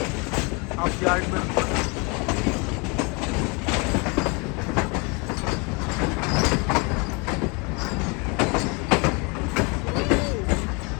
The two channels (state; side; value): quieter; right; 30.5 dB